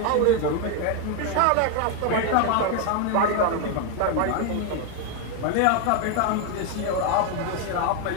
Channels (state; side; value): different; both; correlation 0.01